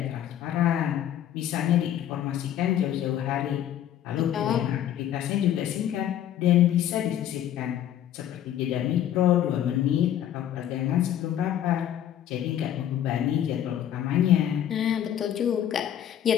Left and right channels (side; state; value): right; quieter; 10.9 dB